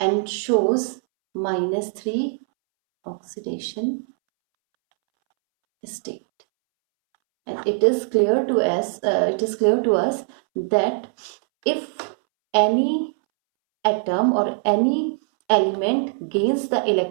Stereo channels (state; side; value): silent; left; 64 dB below the other